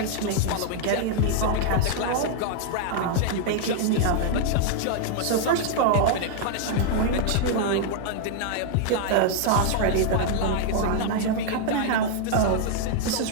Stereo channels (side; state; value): both; different; correlation -0.01